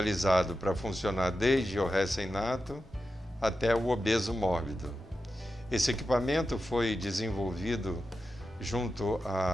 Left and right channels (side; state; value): both; normal; correlation 0.91